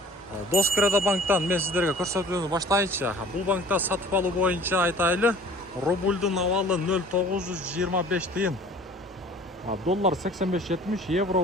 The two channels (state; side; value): normal; both; correlation 0.49